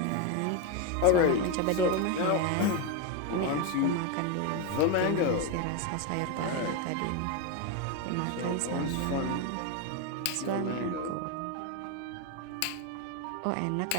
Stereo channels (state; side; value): different; both; correlation 0.03